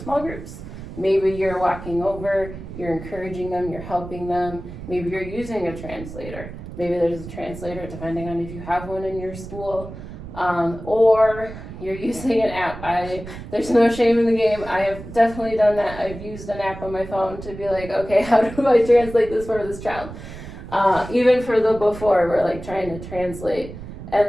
groups. Maybe you're walking over, you're encouraging them, you're helping them, maybe you're using a translator. Maybe there's a translator depending on if you have one in your school, or you're using an app. There's no shame in the game. I have definitely done that. I've used an app on my phone to be like, okay, how do I translate this for this child? Even for the before, we're like trying to translate,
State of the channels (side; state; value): right; noise; rumble, 12 dB below the sound